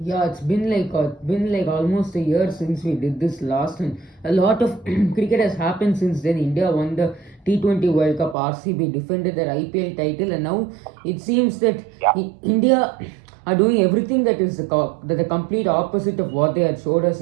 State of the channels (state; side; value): drops out; left; at 8.3 s